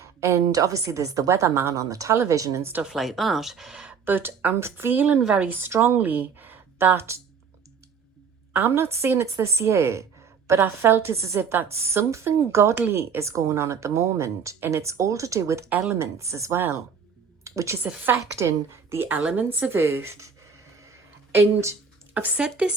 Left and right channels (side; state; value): left; quieter; 6.3 dB